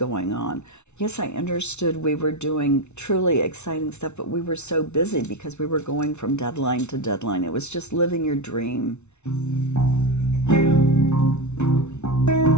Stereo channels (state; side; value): late; right; 0.82 ms